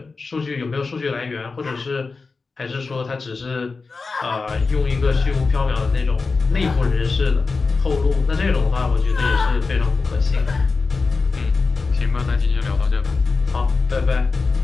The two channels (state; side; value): quieter; right; 4.2 dB